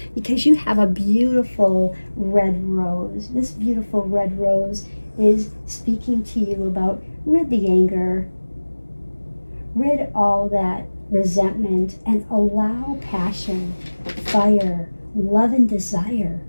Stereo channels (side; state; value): both; inverted; correlation -1.00